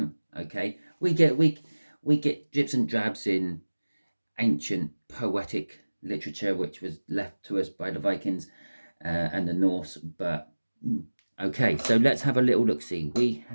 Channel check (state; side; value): inverted; both; correlation -1.00